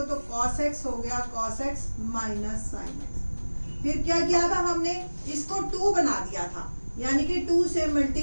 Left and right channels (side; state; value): both; inverted; correlation -1.00